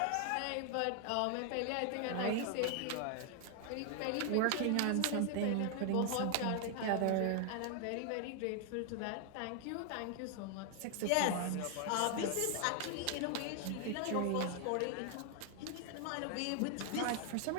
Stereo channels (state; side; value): different; both; correlation 0.00